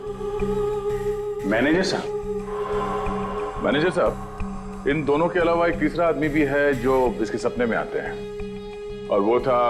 मैनेजर साहब। मैनेजर साहब, इन दोनों के अलावा एक तीसरा आदमी भी है जो इसके सपने में आते हैं, और वो था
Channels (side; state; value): both; identical; correlation 1.00